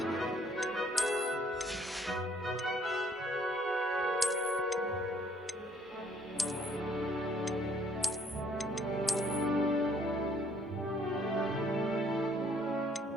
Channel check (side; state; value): both; normal; correlation 0.62